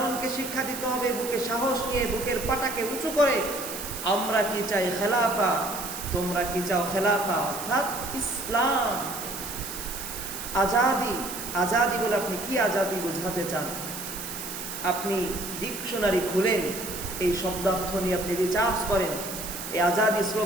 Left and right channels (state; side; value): noise; right; hiss, 8 dB below the sound